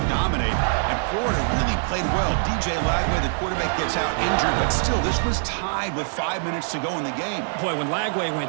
dominate, and Florida really played well. DJ Lagway, the quarterback, gets out injured, but still, this was tied with 5 minutes to go in the game. Boy, when Lagway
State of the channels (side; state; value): left; silent; 63 dB below the other